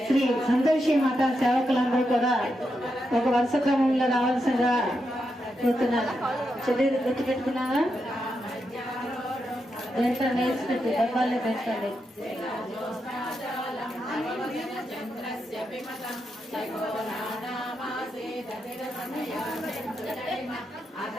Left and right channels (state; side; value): normal; both; correlation 0.85